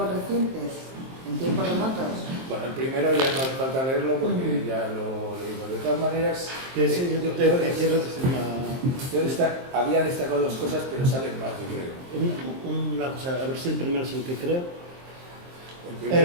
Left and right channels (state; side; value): late; left; 23 ms